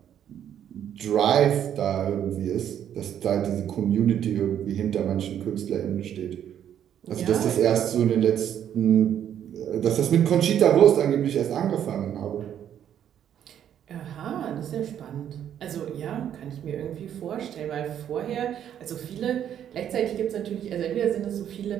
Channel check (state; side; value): quieter; left; 9.8 dB